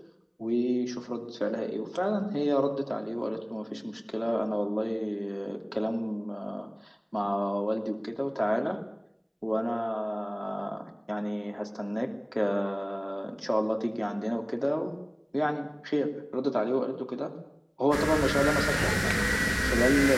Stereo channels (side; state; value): both; identical; correlation 1.00